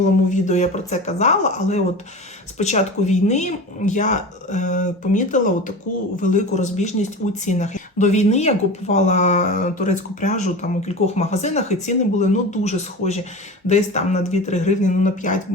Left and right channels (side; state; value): both; normal; correlation 0.31